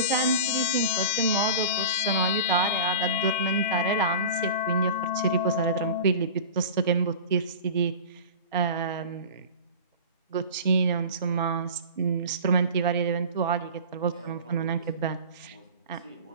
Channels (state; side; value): inverted; both; correlation -0.33